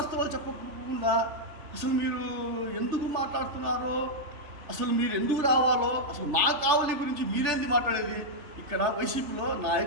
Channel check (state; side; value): late; left; 3.4 ms